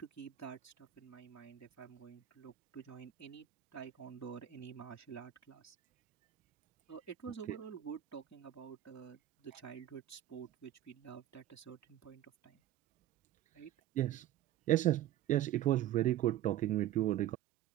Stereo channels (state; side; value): quieter; left; 12.9 dB